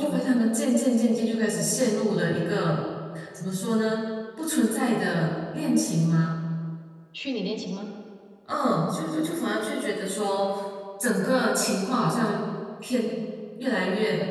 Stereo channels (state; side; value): identical; both; correlation 1.00